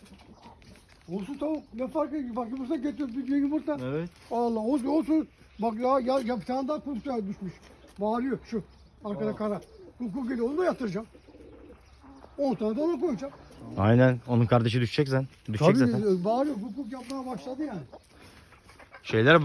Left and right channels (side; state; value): both; identical; correlation 1.00